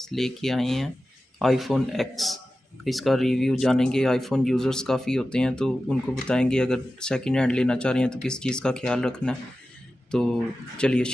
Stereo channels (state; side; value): normal; both; correlation 0.94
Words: लेके आए हैं आईफोन एक्स। इसका रिव्यू जानेंगे। आईफोन यूज़र्स काफ़ी होते हैं तो उनको बताएंगे अगर सेकंड हैंड लेना चाह रहे हैं तो किस चीज़ का ख्याल रखना है। तो चलिए